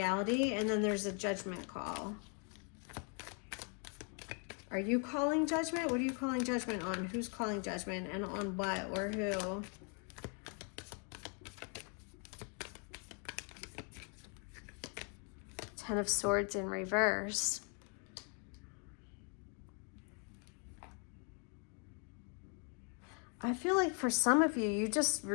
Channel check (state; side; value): quieter; right; 39.8 dB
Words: and then there's a judgment call. Are you calling judgment? What are you calling judgment on? Who's calling judgment, and on what or who? Ten of Swords in reverse. I feel like for some of you, you just